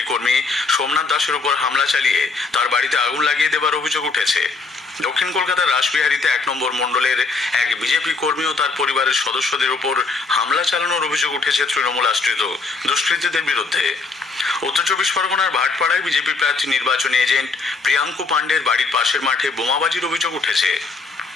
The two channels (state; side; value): quieter; right; 4.1 dB